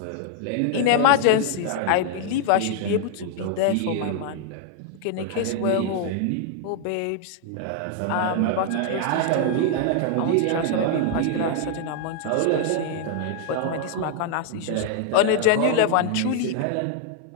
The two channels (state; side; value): different; both; correlation 0.00